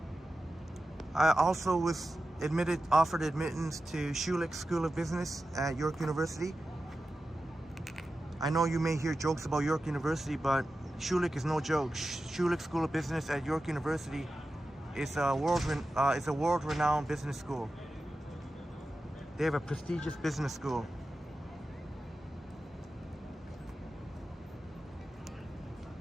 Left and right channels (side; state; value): both; normal; correlation 0.92